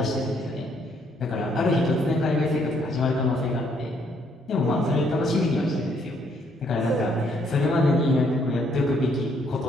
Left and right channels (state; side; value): normal; both; correlation 0.69